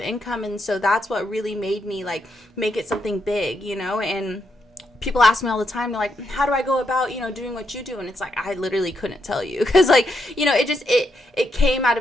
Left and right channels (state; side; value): normal; both; correlation 0.80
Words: income. And so that's what really made me like make it something big, and people ask me all the time, they're like, how do I go about, doing what you do? And it's like, I literally couldn't tell you. Because, like, it came out